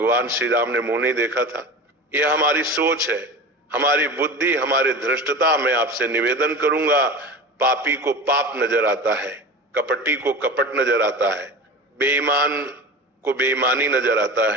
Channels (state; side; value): normal; both; correlation 0.32